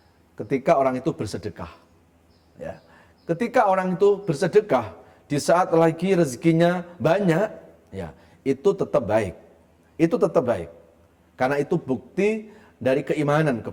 ketika orang itu bersedekah. Ya. Ketika orang itu bersedekah, di saat lagi rezekinya banyak, ya, itu tetap baik. Itu tetap baik. Karena itu bukti dari keimanan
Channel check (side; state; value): both; identical; correlation 1.00